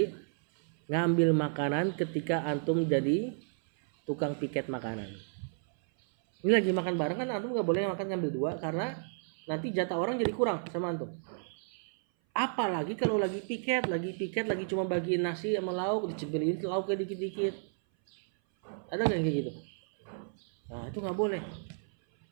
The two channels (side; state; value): left; silent; 56 dB below the other